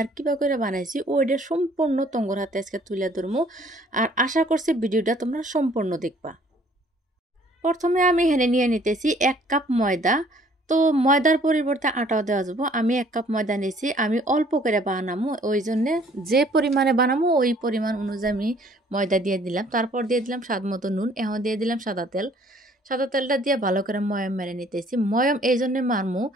কিভাবে করে বানাইছি ওইটা সম্পূর্ণ তঙ্গর হাতে আজকে তুলে ধরবো। আর আশা করছি ভিডিওটা তোমরা সম্পূর্ণ দেখবা। প্রথমে আমি এখানে নিয়ে নিতেছি 1 কাপ ময়দা। তো ময়দার পরিবর্তে আটাও দেওয়া যাবো। আমি 1 কাপ ময়দা নিয়েছি, আমি অল্প করে বানাবো, ওই জন্যে যে পরিমাণে বানাবো ওই পরিমাণ অনুযায়ী আমি ময়দা দিয়ে দিলাম। তারপর দিয়ে দিলাম স্বাদ মতো নুন, এখন দিয়ে দিলাম সাদা তেল। সাদা তেলটা দিয়ে ভালো করে ময়ম মেরে নিতেছি। ময়ম এই জন্যে মারমু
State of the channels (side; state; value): both; normal; correlation 0.59